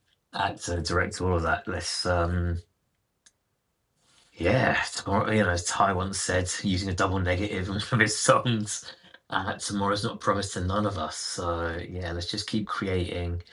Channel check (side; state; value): both; identical; correlation 1.00